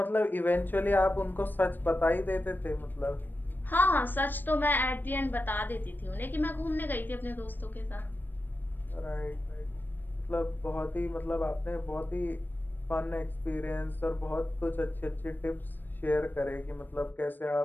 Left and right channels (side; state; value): right; late; 0.092 ms